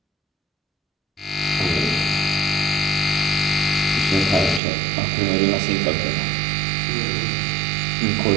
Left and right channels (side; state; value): left; drops out; at 4.6 s